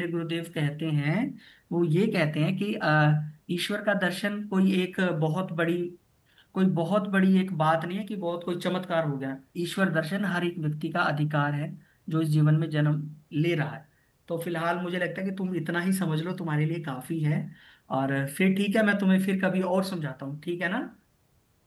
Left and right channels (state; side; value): identical; both; correlation 1.00